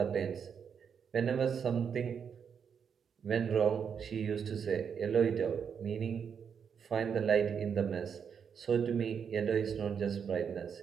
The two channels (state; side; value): quieter; left; 7.1 dB